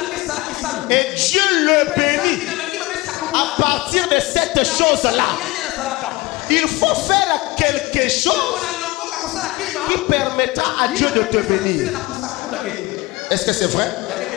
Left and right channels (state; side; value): quieter; right; 21.2 dB